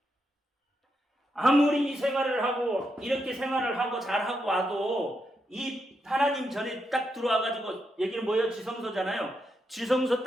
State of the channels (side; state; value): both; normal; correlation 0.83